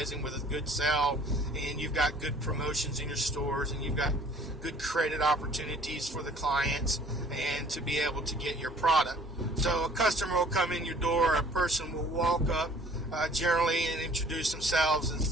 with a good sell, and you've got good promotions in your stores, and you've got good credit opportunities for the clients and to be able to get your product. So a customer will come in your door, a person will walk up generally and introduce themselves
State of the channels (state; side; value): normal; both; correlation 0.54